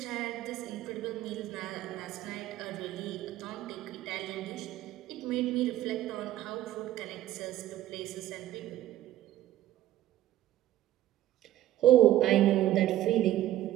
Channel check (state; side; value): quieter; left; 13.8 dB